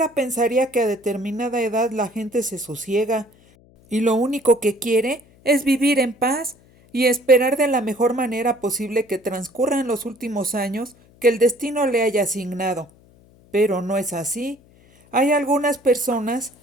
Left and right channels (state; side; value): noise; left; hum, 29 dB below the sound